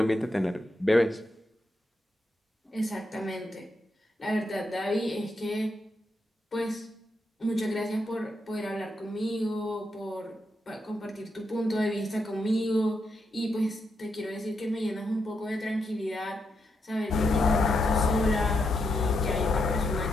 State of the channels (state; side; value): normal; both; correlation 0.82